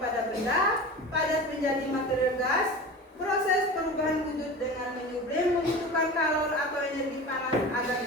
benda padat menjadi material gas. Proses perubahan wujud dengan menyublim membutuhkan kalor atau energi panas agar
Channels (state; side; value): normal; both; correlation 0.33